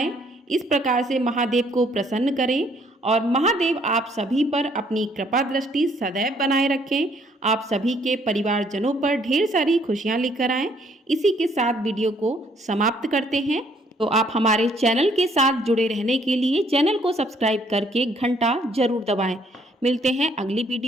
इस प्रकार से महादेव को प्रसन्न करें और महादेव आप सभी पर अपनी कृपा दृष्टि सदैव बनाए रखें। आप सभी के परिवारजनों पर ढेर सारी खुशियां लेकर आएं। इसी के साथ वीडियो को समाप्त करते हैं। तो आप हमारे चैनल के साथ जुड़े रहने के लिए चैनल को सब्सक्राइब करके घंटा जरूर दबाएं। मिलते हैं अगली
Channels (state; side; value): normal; both; correlation 0.65